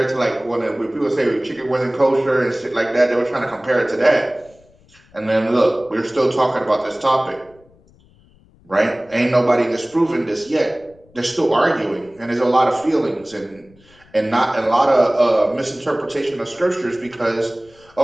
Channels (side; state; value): left; noise; rumble, 29 dB below the sound